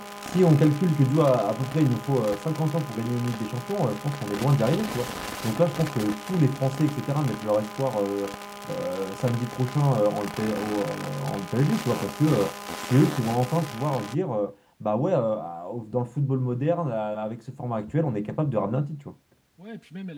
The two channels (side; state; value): both; identical; correlation 1.00